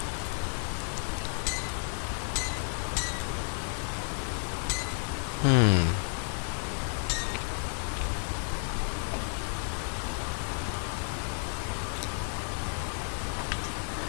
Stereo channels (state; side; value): silent; right; 57 dB below the other